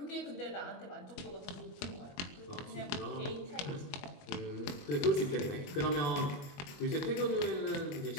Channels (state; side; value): late; right; 21 ms